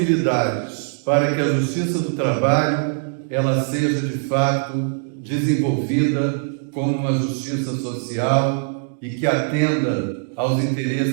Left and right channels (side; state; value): left; silent; digital silence